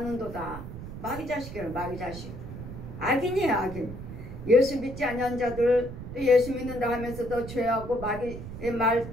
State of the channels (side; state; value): right; noise; rumble, 10 dB below the sound